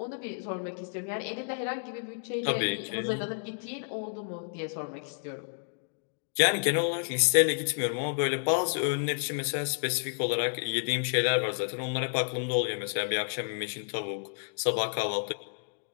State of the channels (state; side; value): silent; right; digital silence